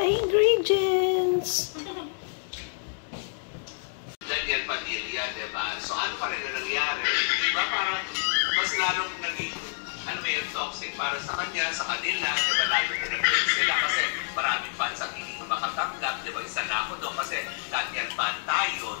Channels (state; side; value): silent; right; digital silence